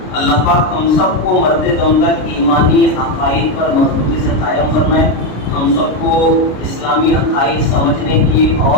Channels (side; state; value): right; late; 33 ms